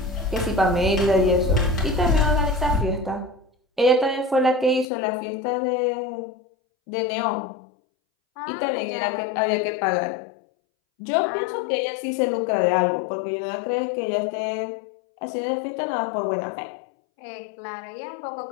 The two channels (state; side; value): drops out; right; at 4.9 s